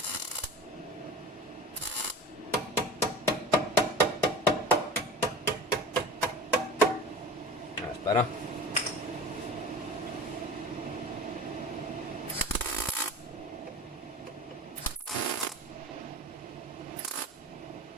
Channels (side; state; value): both; normal; correlation 0.35